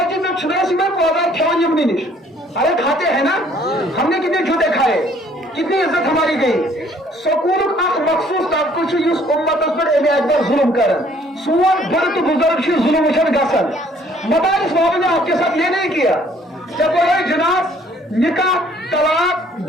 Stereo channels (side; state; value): both; normal; correlation 0.60